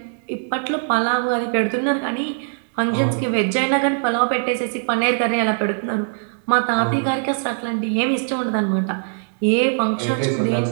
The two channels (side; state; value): left; silent; digital silence